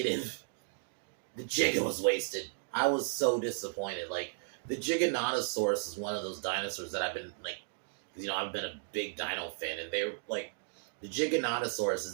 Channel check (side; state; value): left; silent; digital silence